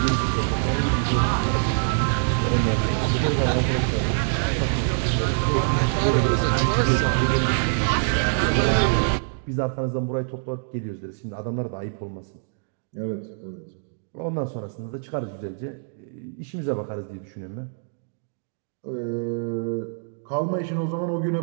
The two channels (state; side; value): silent; left; digital silence